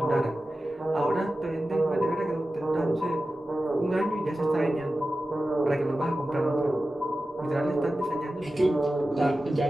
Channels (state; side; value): normal; both; correlation 0.94